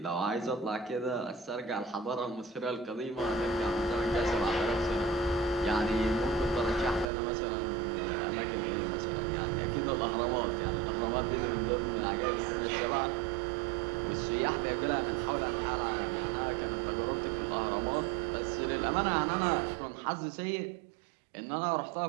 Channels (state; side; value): drops out; left; at 7.1 s